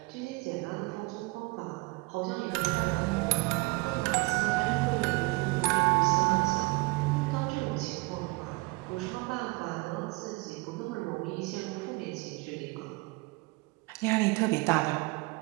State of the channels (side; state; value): left; quieter; 25.5 dB